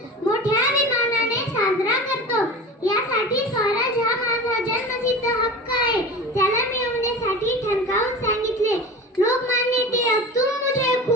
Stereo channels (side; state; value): both; normal; correlation 0.33